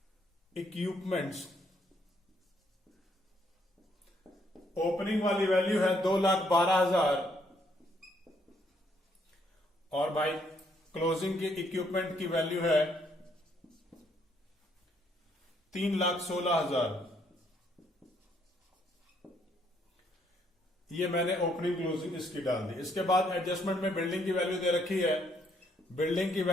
इक्विपमेंट्स ओपनिंग वाली वैल्यू है 2,12,000 और भाई क्लोजिंग के इक्विपमेंट की वैल्यू है 3,16,000। ये मैंने ओपनिंग क्लोजिंग इसकी डाल दी। इसके बाद एडजस्टमेंट में बिल्डिंग की वैल्यू दे रखी है। बिल्डिंग की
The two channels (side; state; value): both; normal; correlation 0.70